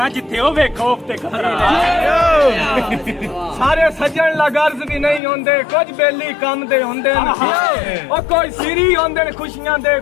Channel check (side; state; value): right; drops out; at 5.2 s